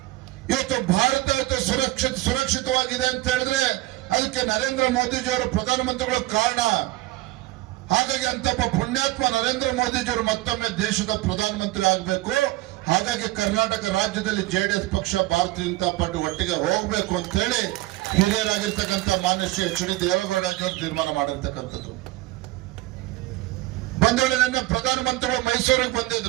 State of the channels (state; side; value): quieter; left; 18.3 dB